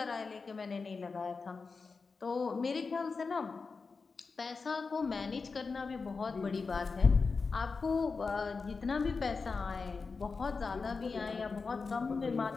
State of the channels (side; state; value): right; quieter; 4.6 dB